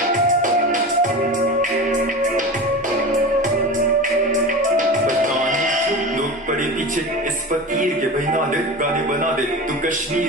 पीछे इस फकीर के बहना दे, गाने बना दे तू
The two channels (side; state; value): both; normal; correlation 0.28